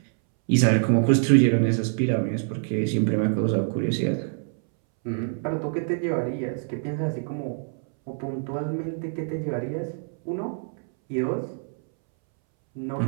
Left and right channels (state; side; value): silent; left; 61 dB below the other